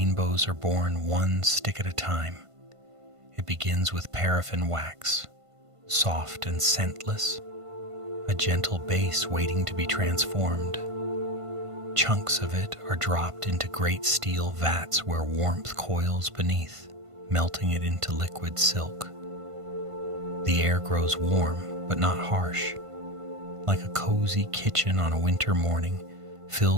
are born one stick at a time. It begins with paraffin wax, soft and scentless, a gentle base waiting to be transformed. Chunks of it are dropped into great steel vats where warmth coils beneath, melting it into liquid silk. The air grows warm, but not harsh, like a cozy kitchen on a winter morning,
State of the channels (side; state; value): left; late; 1.5 ms